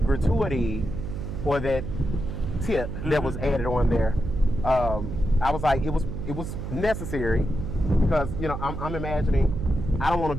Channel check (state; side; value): noise; right; hum, 6 dB below the sound